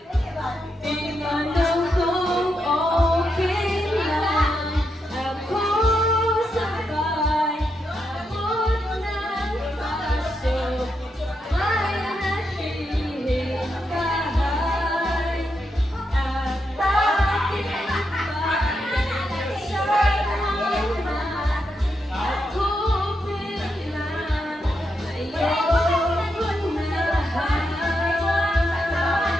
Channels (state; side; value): normal; both; correlation 0.83